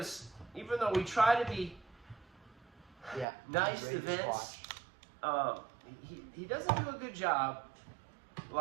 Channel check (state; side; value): drops out; left; at 3.2 s